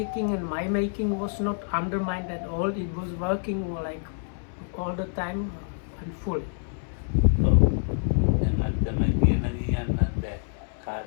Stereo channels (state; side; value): silent; right; 60 dB below the other